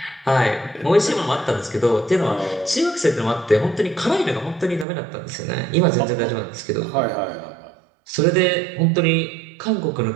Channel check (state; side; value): drops out; left; at 4.9 s